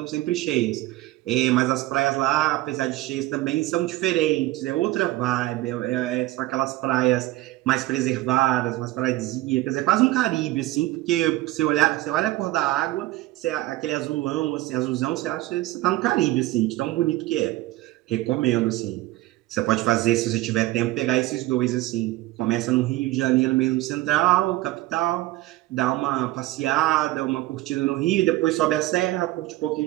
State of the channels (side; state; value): left; quieter; 17.4 dB